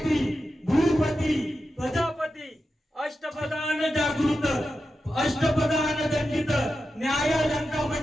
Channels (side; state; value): both; normal; correlation 0.90